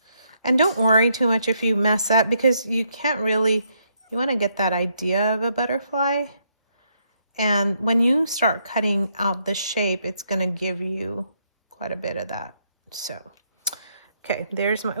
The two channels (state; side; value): inverted; both; correlation -0.75